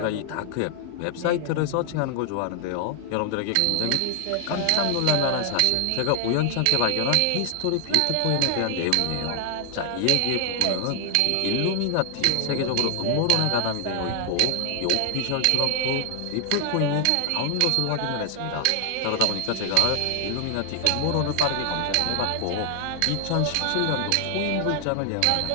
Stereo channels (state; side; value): different; both; correlation 0.00